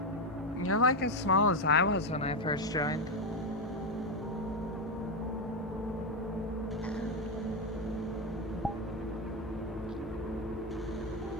You're like as small as I was when I first joined.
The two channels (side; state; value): both; normal; correlation 0.07